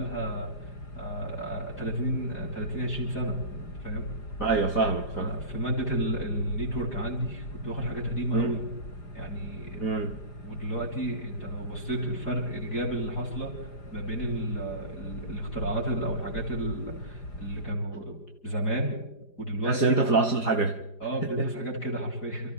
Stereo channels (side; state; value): right; late; 4.9 ms